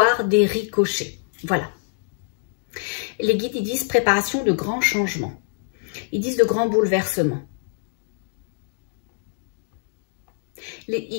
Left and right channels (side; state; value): right; silent; digital silence